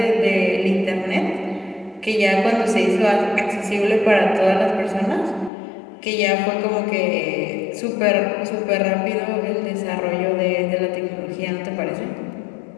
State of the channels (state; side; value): drops out; right; at 5.5 s